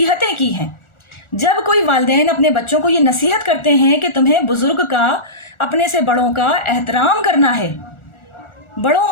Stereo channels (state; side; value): late; right; 1.4 ms